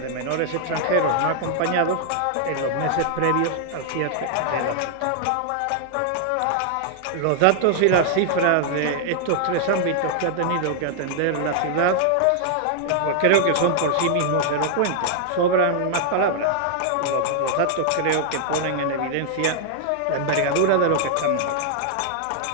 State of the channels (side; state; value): both; different; correlation 0.00